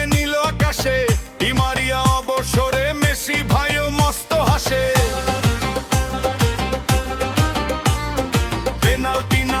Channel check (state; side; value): identical; both; correlation 1.00